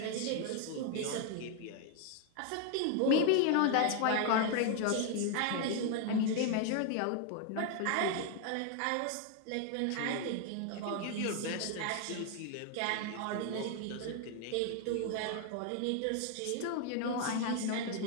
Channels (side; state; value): both; different; correlation 0.01